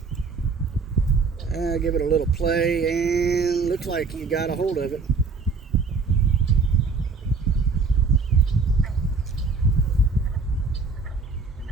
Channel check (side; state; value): left; quieter; 4.6 dB